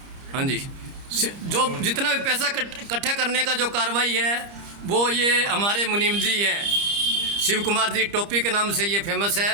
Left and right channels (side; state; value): left; late; 30 ms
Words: जी, जो जितना भी पैसा इकट्ठा करने का जो कार्रवाई है वो ये हमारे मुनीम जी हैं। शिव कुमार जी टोपी के नाम से ये फेमस